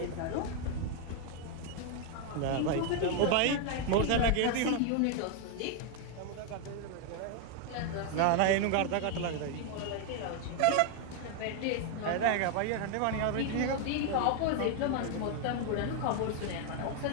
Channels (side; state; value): both; different; correlation 0.01